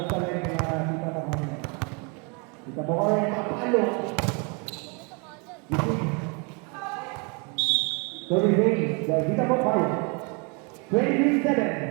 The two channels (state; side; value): quieter; left; 33.3 dB